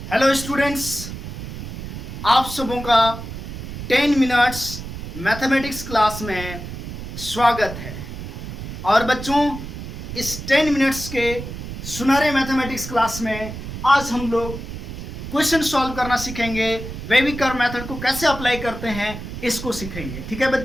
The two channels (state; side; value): noise; right; rumble, 9 dB below the sound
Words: हेलो स्टूडेंट्स, आप सबों का 10 मिनट्स मैथमेटिक्स क्लास में स्वागत है। और बच्चों, इस 10 मिनट्स के सुनहरे मैथमेटिक्स क्लास में आज हम लोग क्वेश्चन सॉल्व करना सीखेंगे। वेविकर मेथड को कैसे अप्लाई करते हैं इसको सीखेंगे। ठीक है